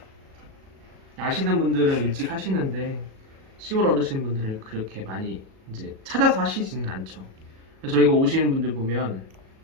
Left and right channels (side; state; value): left; late; 37 ms